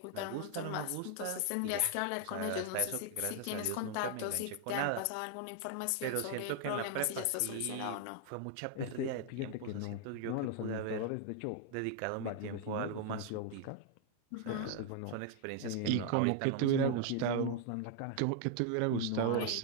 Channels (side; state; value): both; different; correlation 0.00